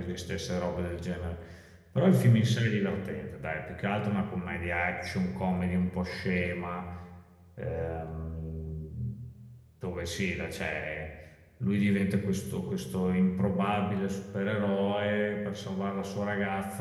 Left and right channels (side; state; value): both; identical; correlation 1.00